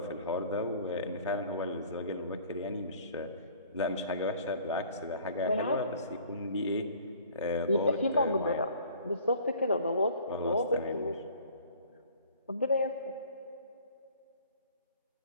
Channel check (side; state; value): both; inverted; correlation -0.51